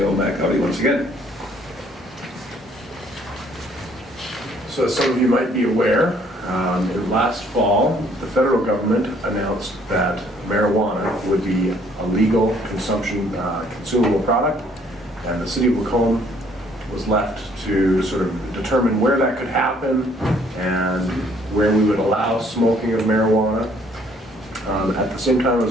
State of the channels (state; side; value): normal; both; correlation 0.63